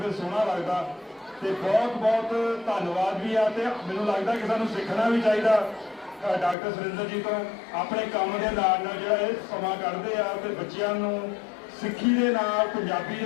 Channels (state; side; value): drops out; right; at 6.6 s